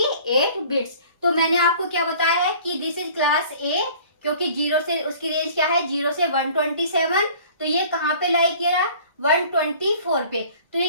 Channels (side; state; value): both; inverted; correlation -0.49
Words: बिट्स। तो मैंने आपको क्या बताया है कि दिस इज क्लास ए, क्योंकि 0 से उसकी रेंज क्या है 0 से 127, तो ये कहाँ पे लाई किया, 124 पे। तो ये